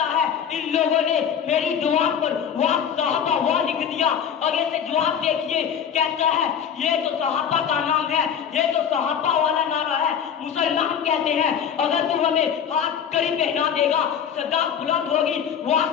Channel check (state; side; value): quieter; right; 8.1 dB